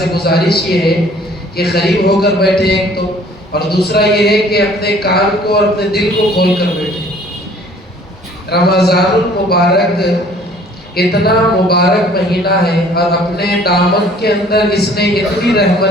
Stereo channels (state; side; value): normal; both; correlation 0.54